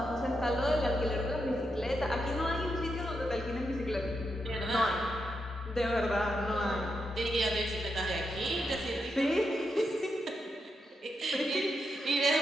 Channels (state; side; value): normal; both; correlation 0.84